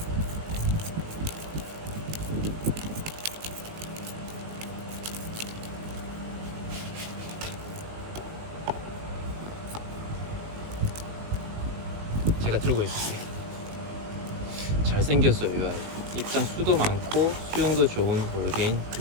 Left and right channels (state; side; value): late; left; 19 ms